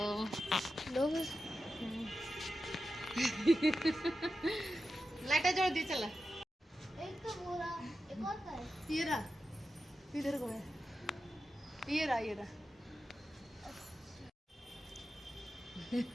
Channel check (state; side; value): normal; both; correlation 0.91